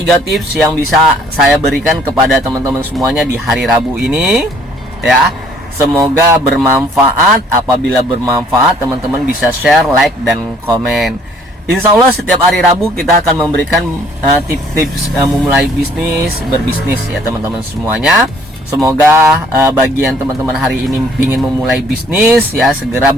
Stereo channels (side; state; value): both; normal; correlation 0.60